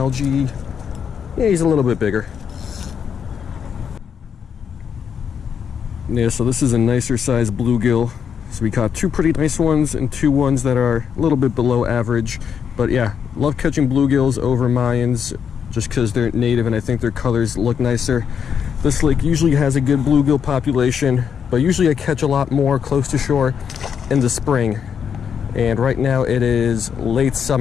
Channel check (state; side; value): quieter; right; 7.4 dB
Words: Yeah, he's a little bit bigger. Yeah, so this is a nicer size bluegill. So we caught two pretty nice ones and two ones that are a little bit below average. But yeah, love catching bluegills over Mayans just because they're native and I think their colors look nicer. This lake usually has a good bluegill population, but usually I catch a lot more close to shore in the spring. And right now it is late